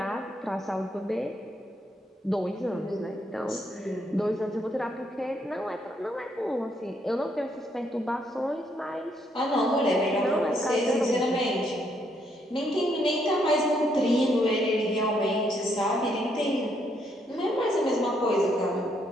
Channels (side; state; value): both; normal; correlation 0.73